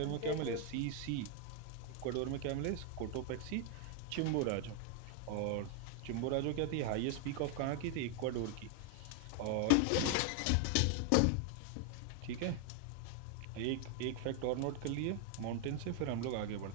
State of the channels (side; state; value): both; different; correlation 0.00